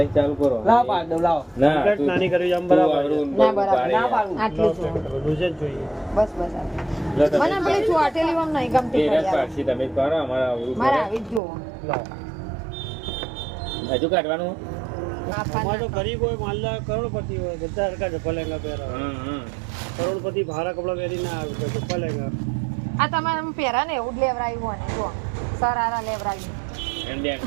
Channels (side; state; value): left; drops out; at 11.4 s